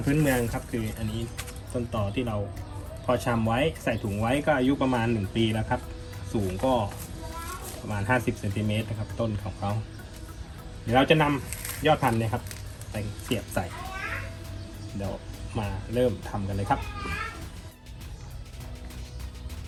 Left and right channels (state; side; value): identical; both; correlation 1.00